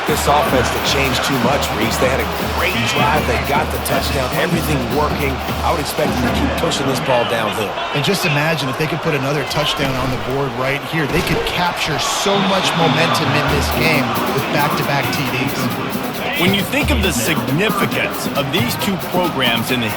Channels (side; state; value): both; identical; correlation 1.00